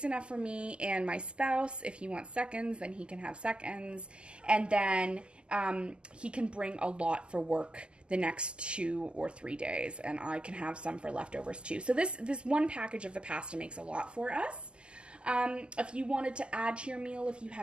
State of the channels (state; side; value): late; left; 0.050 ms